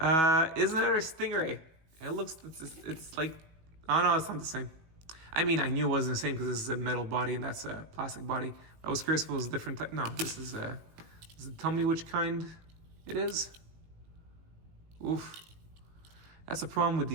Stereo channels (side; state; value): left; late; 18 ms